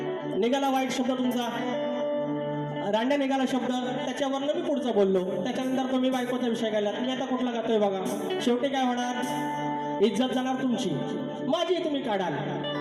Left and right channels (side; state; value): both; identical; correlation 1.00